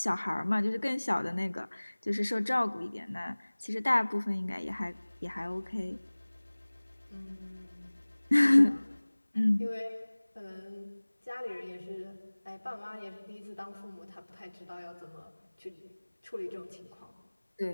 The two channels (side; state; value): both; inverted; correlation -1.00